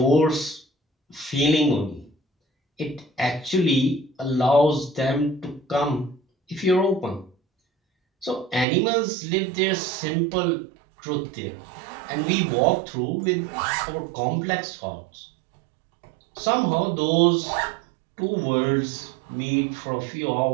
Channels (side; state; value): left; drops out; at 8.7 s